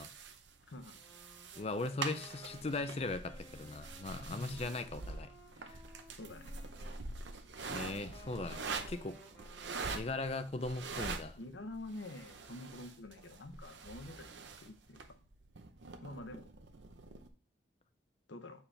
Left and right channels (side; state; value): both; normal; correlation 0.38